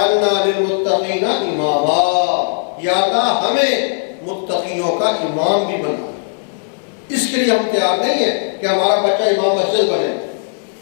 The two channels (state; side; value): silent; right; 62 dB below the other